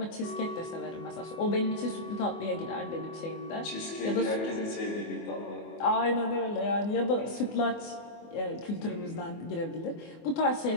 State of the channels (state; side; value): late; right; 24 ms